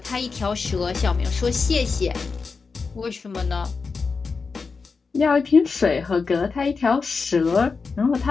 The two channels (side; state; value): right; quieter; 4.8 dB